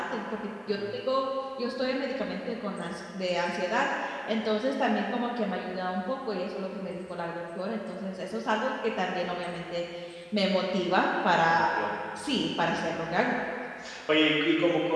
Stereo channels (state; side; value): identical; both; correlation 1.00